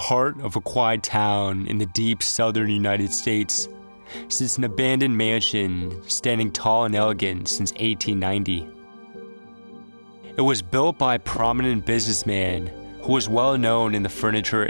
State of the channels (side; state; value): both; inverted; correlation -1.00